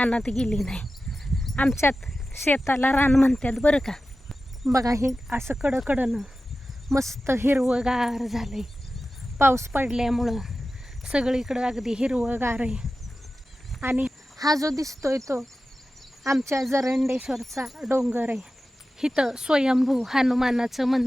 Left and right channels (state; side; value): normal; both; correlation 0.94